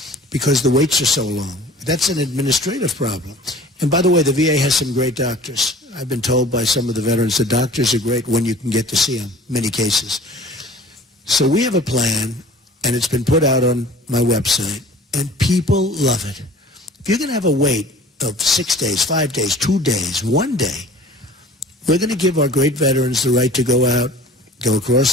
because the waits are so long. That's an administrative problem. And by the way, the VA has some great doctors. I've been told by some of the veterans the doctors are great when you can get to see them, many cases. So we have a plan, and it's been put out on my website, and people love it. If you're going to have a wait of 6 days, 5 days, 2 days, 1 day, we're going to give our great veterans the right to go out, go across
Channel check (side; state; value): both; normal; correlation 0.46